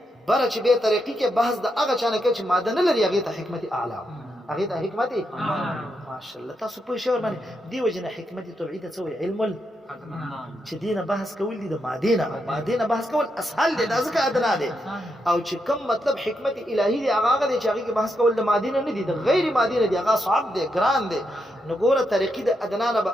بره چې بیا ترقي کې بحث د هغه چا نه کوي چې ماده نه لري، هغې ته حکمت اعلی، هغې ته حکمت ماشاءالله. تاسو پوه شئ ورباندې؟ دې وجې نه حکمت طبعي ته څه وایي؟ علم چې دې نه بحث کول دي د مادې نه، او مادې نه بحث کول اسهل دی، دا ځکه ادنا دی. او چې کوم مطلب حکمت الهي دی هغه دی چې هغې کې بحث کول د مادې نه نه دي، د غیر مادې نه دي، هغه صعب دی، ګران دی. نو ګوره ترقي د ادنا نه به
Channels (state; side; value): normal; both; correlation 0.82